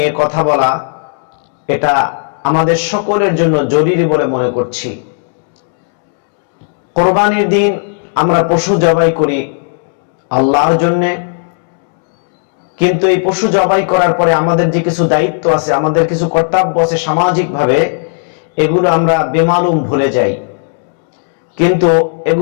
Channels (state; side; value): silent; right; digital silence